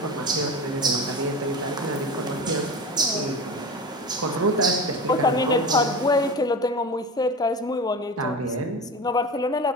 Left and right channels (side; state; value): both; normal; correlation 0.29